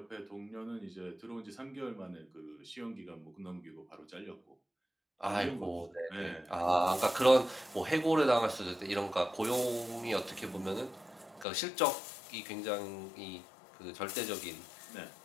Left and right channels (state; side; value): drops out; right; at 11.5 s